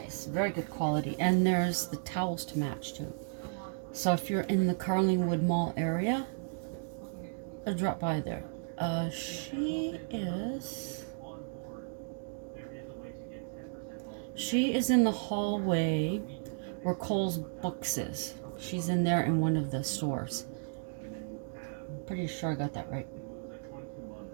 Very good quality. And there's the towels to match too. So if you're in the Carlingwood Mall area, drop by there. She is in the hallway where Cole's Books is. She's in there in one of the stores. I'm pretty sure I got that right.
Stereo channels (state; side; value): silent; left; digital silence